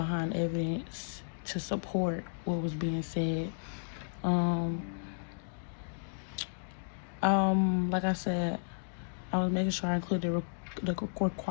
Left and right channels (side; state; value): right; silent; digital silence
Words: evidence to support what was being said. Like I said, I was making sure I included the